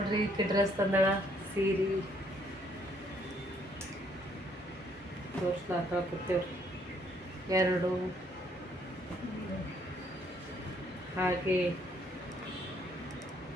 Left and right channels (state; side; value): normal; both; correlation 0.67